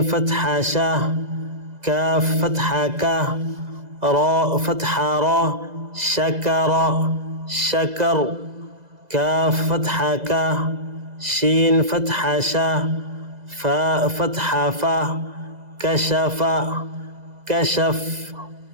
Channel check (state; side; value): late; left; 2.0 ms